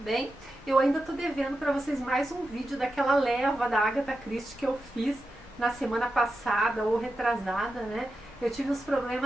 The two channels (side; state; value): both; normal; correlation 0.90